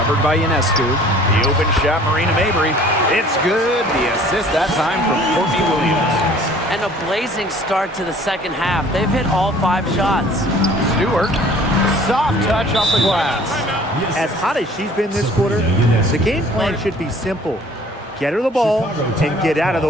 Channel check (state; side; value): normal; both; correlation 0.52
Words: by Ionescu. The open shot, Marina Mabry. It's good. The assist that time from Courtney Williams. And a blazing start to the second half. They've hit all 5 shots. Stewart, soft touch off the glass. As hot as she's been this quarter, the game plan should be simple. Get her the ball and get out of